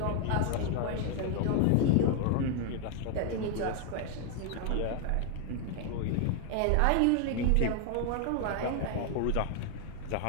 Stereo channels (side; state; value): both; different; correlation 0.00